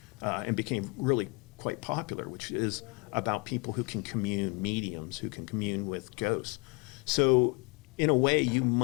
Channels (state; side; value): quieter; right; 28.8 dB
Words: and became really quite popular, which is about people who can commune, mediums who can commune with ghosts. So in a way, you